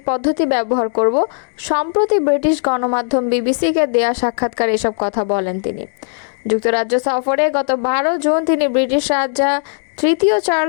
পদ্ধতি ব্যবহার করব। সম্প্রতি ব্রিটিশ গণমাধ্যম বিবিসিকে দেয়া সাক্ষাৎকারে এসব কথা বলেন তিনি। যুক্তরাজ্য সফরে গত 12 জুন তিনি ব্রিটিশ রাজা তৃতীয়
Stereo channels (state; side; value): silent; right; digital silence